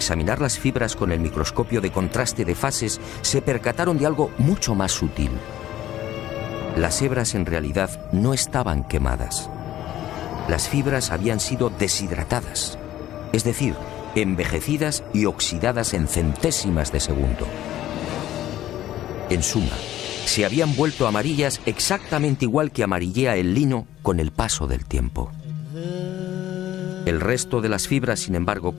las fibras con el microscopio de contraste de fases, se percataron de algo mucho más sutil. Las hebras en realidad no estaban quemadas. Las fibras habían sido deshidratadas, es decir, envejecidas y oxidadas en centésimas de segundo. En suma, se habían vuelto amarillas exactamente igual que amarillea el lino con el paso del tiempo. El resto de las fibras, sin embargo,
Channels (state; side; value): quieter; right; 13.2 dB